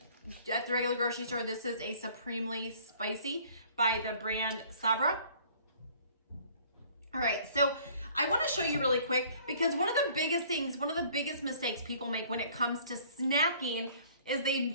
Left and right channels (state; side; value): inverted; both; correlation -0.54